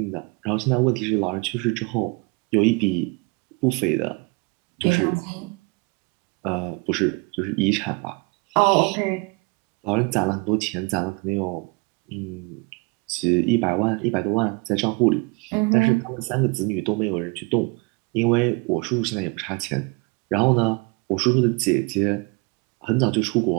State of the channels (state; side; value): quieter; left; 28.7 dB